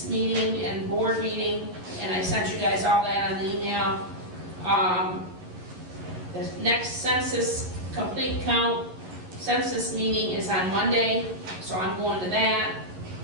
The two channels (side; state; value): left; late; 11 ms